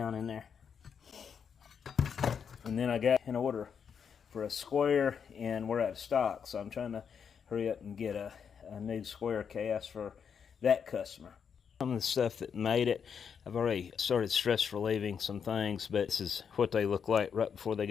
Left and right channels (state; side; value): quieter; right; 7.0 dB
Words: in there. And then I got an order for a square, and we're out of stock, so I'm trying to hurry up and get a new square cast for that customer. Some of the stuff that made it, I've already started stress relieving some things, but this is what they look like right before they